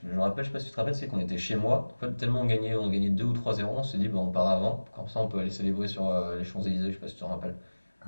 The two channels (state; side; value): inverted; both; correlation -1.00